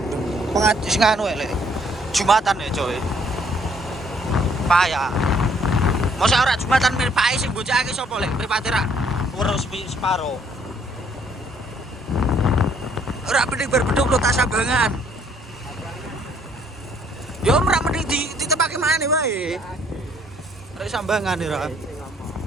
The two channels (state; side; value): normal; both; correlation 0.64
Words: Pengaji sing anu e, Lek. Jumatan ya, coy. Payah. Masa ora Jumatan mirpae sing bocahake sapa, Lek? Mripate rak urus separo. Ora mending berbeduk lo tak sambangan. Yo ora mending ditepake maneh wae. Rek sambangan ora.